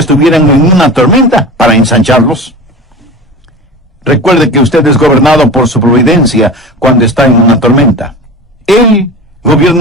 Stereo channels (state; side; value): normal; both; correlation 0.32